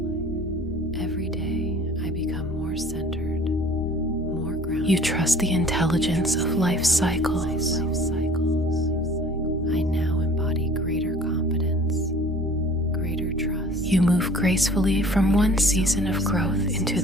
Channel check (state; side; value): normal; both; correlation 0.49